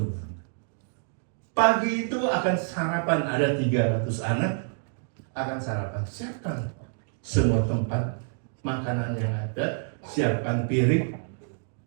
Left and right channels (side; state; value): left; silent; digital silence